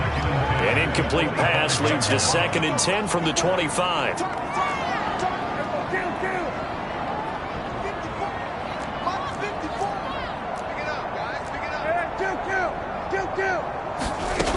An incomplete pass leads to 2nd and 10 from the 25.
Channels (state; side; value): identical; both; correlation 1.00